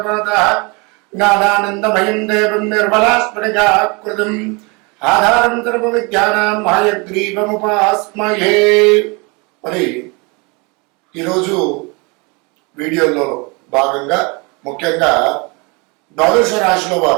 జ్ఞానానందమయం దేవం నిర్మలాస్ఫటికాకృతిం ఆధారం సర్వ విద్యానాం హయగ్రీవముపాస్మహే. మరి ఈరోజు వీడియోలో భాగంగా ముఖ్యంగా ద్వాదశ రాశిలో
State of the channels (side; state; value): left; quieter; 29.4 dB